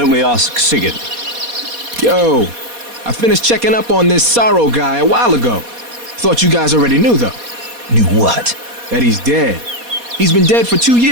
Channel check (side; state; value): left; late; 4.2 ms